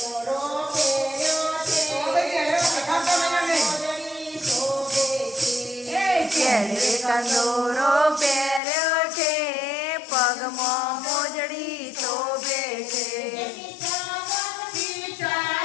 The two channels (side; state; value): right; drops out; at 8.6 s